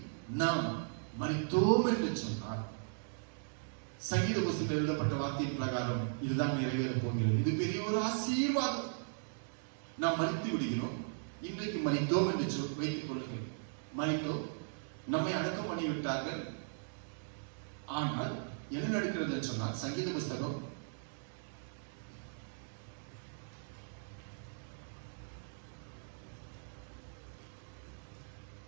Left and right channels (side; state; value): left; silent; digital silence